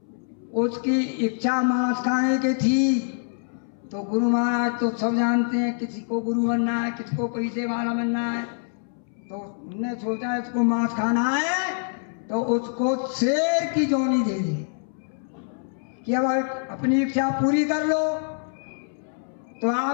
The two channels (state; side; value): silent; right; 62 dB below the other